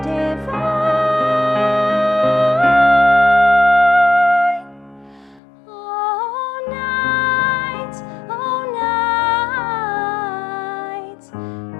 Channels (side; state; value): right; drops out; at 5.4 s